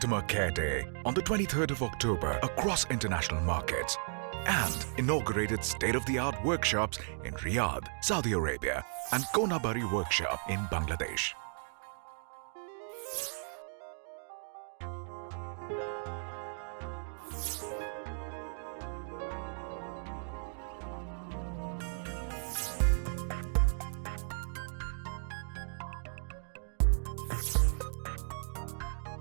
Care Day on the 23rd of October across international markets and inaugurated state-of-the-art workshops in Riyadh, Saudi Arabia and Konabari Workshop in Bangladesh.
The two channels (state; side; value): silent; left; digital silence